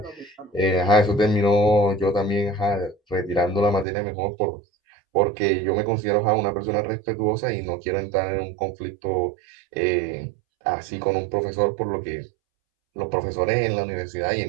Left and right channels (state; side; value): drops out; left; at 3.9 s